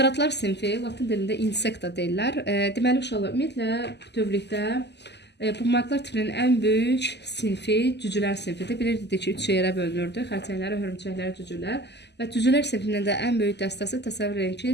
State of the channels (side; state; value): right; late; 0.50 ms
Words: sinfi, latin dilində insekta deyirlər. Deməli, uşaqlar, ümumiyyətlə bütövlükdə bu maddelər tipinin ən böyük sinfi cücülər sinfidir. Bilirdik ki, 3 yerə bölünürdü. Xərçənglər, hörümçəklər, cücülər. Və cücülər sinfinin də ən böyük dəstəsi təsəvvür edin ki,